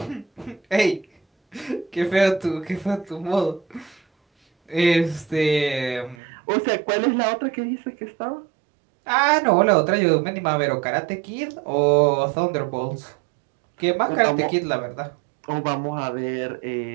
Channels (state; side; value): drops out; left; at 6.2 s